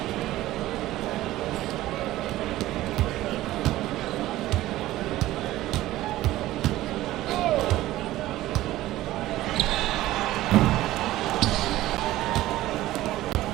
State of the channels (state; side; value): quieter; left; 15.8 dB